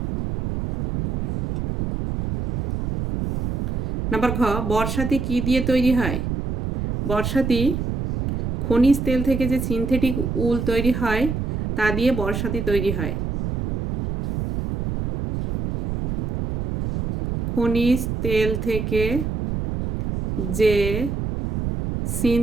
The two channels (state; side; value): noise; right; rumble, 3 dB below the sound